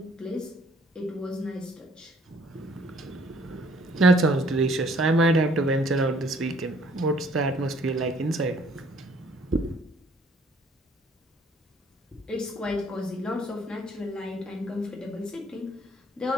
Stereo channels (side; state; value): both; normal; correlation 0.61